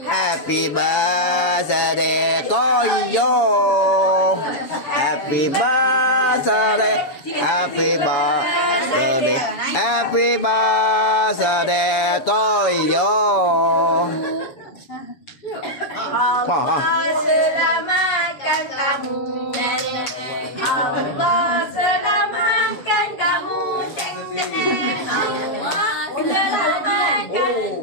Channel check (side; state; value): right; late; 7.2 ms